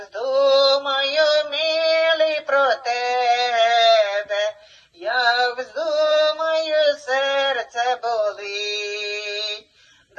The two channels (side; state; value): both; identical; correlation 1.00